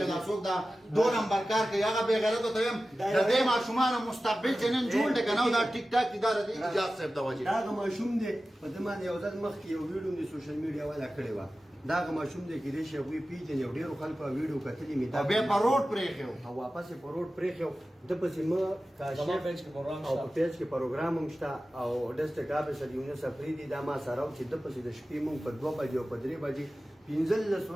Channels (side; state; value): both; normal; correlation 0.95